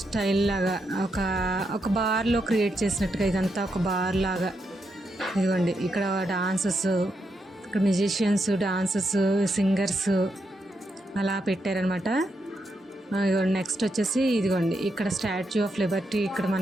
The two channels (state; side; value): normal; both; correlation 0.82